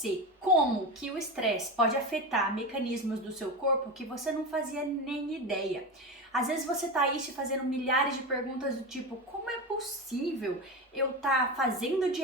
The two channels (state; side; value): normal; both; correlation 0.21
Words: como que o estresse pode afetar mecanismos do seu corpo que você não fazia nem ideia. Às vezes você tá aí te fazendo milhares de perguntas do tipo, como é possível eu tá fazendo